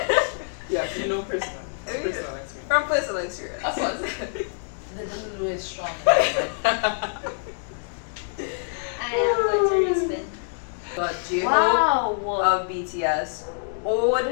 Yes, you know personal experience. From personal experience. Of course. The Lulu is strong. I am going to respin. But J-Hope Wow. of BTS,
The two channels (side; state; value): right; silent; digital silence